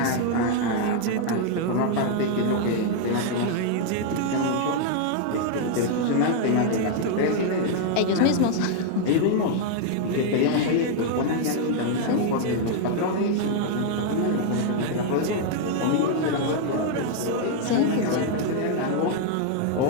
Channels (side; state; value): both; different; correlation 0.00